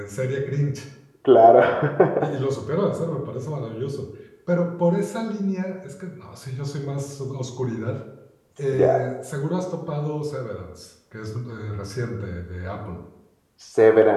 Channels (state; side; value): identical; both; correlation 1.00